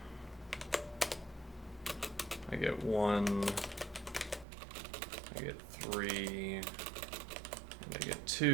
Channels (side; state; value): left; drops out; at 4.5 s